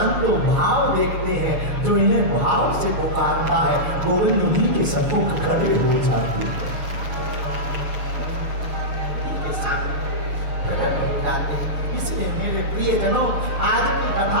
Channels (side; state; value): left; late; 6.9 ms